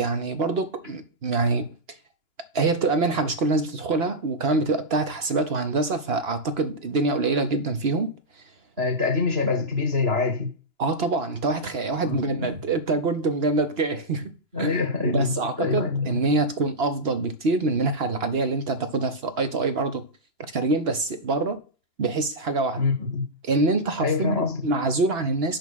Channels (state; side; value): late; left; 2.9 ms